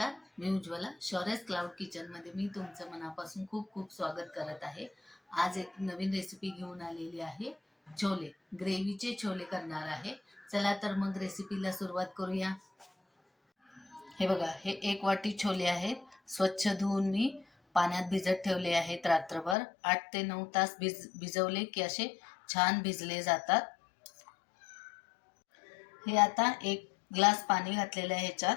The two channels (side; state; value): right; drops out; at 19.6 s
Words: मी उज्ज्वला. शौर्यस क्लाउड किचनमध्ये मी तुमचं मनापासून खूप खूप स्वागत करत आहे. आज एक नवीन रेसिपी घेऊन आलेली आहे. छोले, ग्रेव्हीचे छोले करणार आहे. चला तर मग रेसिपीला सुरुवात करूया. हे बघा, हे 1 वाटी छोले आहेत. स्वच्छ धुवून मी पाण्यात भिजत ठेवले आहेत रात्रभर. 8 ते 9 तास भिजवले की असे छान भिजले जातात. हे आता 1 ग्लास पाणी घातलेलं आहे ह्याच्यात.